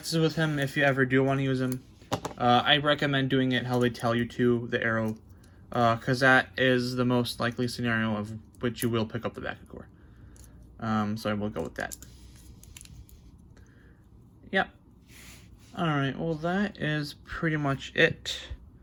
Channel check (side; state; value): both; identical; correlation 1.00